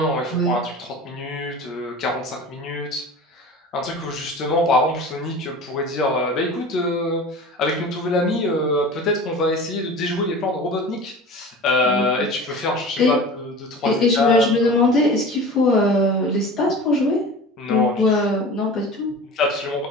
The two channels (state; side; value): normal; both; correlation 0.36